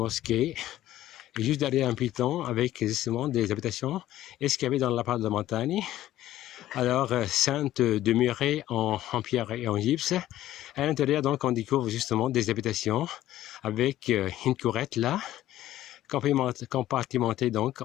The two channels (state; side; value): quieter; right; 13.9 dB